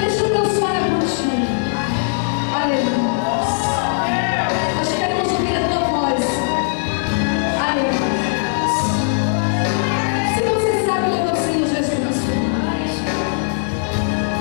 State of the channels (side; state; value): right; silent; digital silence